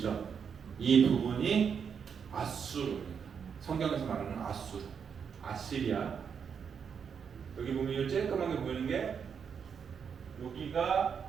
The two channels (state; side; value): quieter; left; 6.9 dB